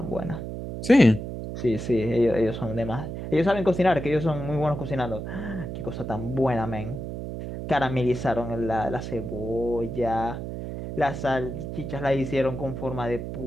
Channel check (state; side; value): noise; right; hum, 7 dB below the sound